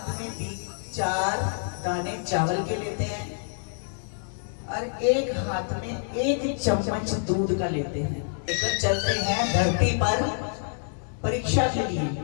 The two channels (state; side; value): silent; right; digital silence